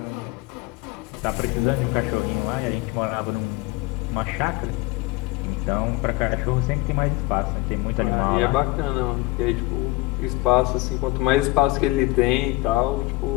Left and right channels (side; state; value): right; quieter; 21.0 dB